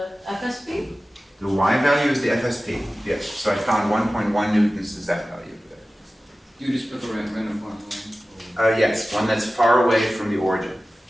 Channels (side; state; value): both; normal; correlation 0.96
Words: FSP? The y value is the FSP. Yes. So I found 1.1 newtons is that value over there. You just put the random point line. Yes, one that's far away from the origin.